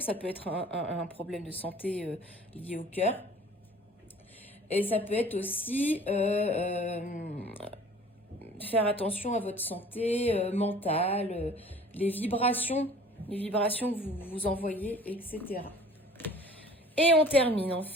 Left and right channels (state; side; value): normal; both; correlation 0.49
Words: Ça peut être un problème de santé lié au cœur. Et ça peut être aussi faire attention à votre santé mentale, les vibrations que vous envoyez, etc. Et on termine